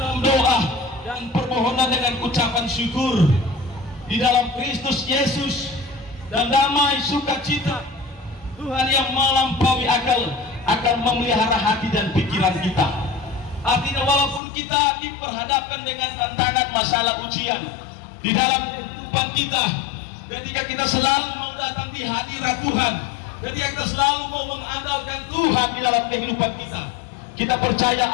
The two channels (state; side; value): drops out; right; at 14.4 s